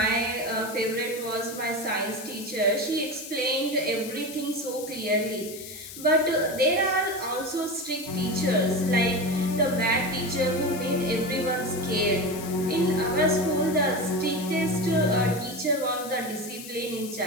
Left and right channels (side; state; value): left; noise; hiss, 12 dB below the sound